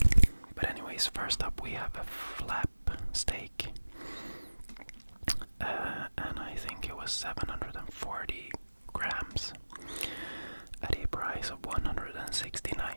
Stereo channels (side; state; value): both; inverted; correlation -1.00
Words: But anyways, first up we have a flap steak, and I think it was 740 grams at a price of